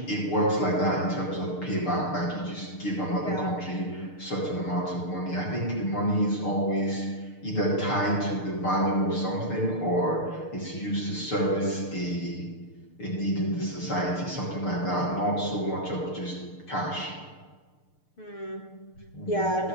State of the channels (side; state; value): right; late; 6.6 ms